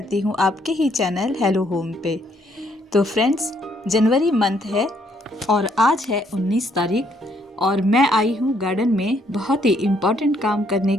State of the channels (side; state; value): both; normal; correlation 0.70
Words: हूं आपके ही चैनल हेलो होम पे। तो फ्रेंड्स, जनवरी मंथ है और आज है 19 तारीख और मैं आई हूं गार्डन में बहुत ही इम्पॉर्टेंट काम करने